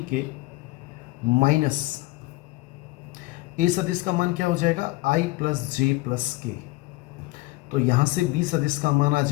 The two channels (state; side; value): quieter; right; 20.6 dB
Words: minus A सदिश का मान क्या हो जाएगा, i + j + k। तो यहाँ से B सदिश का मान आ